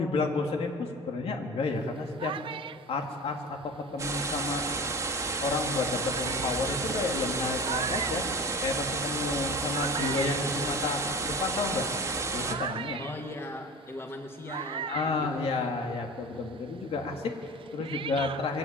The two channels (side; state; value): both; normal; correlation 0.34